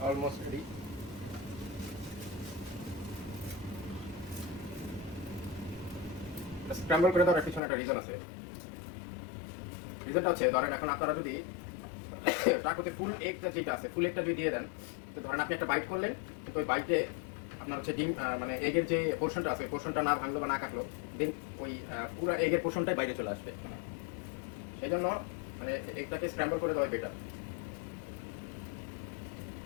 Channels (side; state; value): right; drops out; at 7.6 s